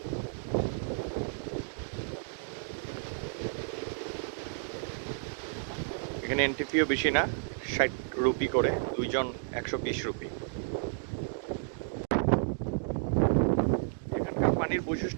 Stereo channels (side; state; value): left; silent; digital silence